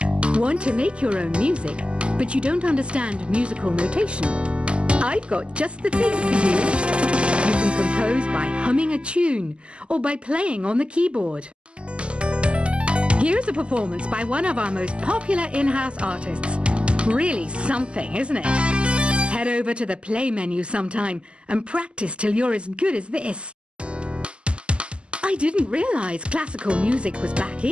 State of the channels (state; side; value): late; left; 0.052 ms